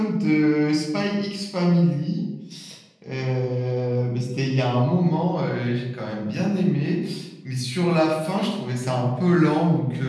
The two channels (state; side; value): identical; both; correlation 1.00